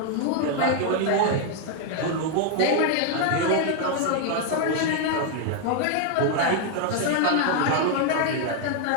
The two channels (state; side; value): different; both; correlation 0.00